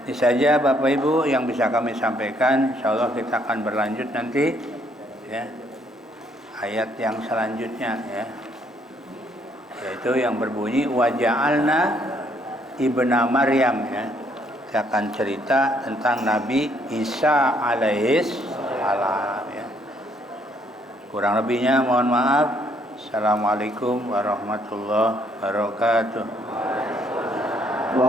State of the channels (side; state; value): both; normal; correlation 0.68